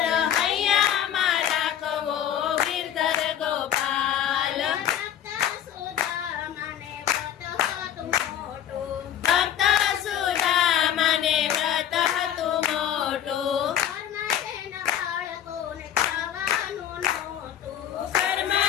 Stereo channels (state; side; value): quieter; right; 10.1 dB